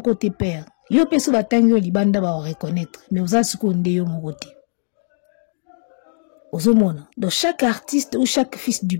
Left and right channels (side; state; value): right; silent; digital silence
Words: te père. Yo peso batangi yo libanda ba reconnaître. Mais ozala siko nde yo moko te. Ozomona. Donc chaque artiste ou chaque fils du